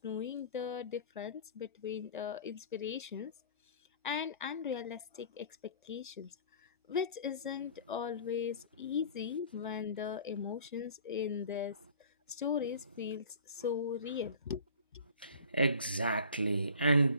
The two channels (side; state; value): both; inverted; correlation -0.46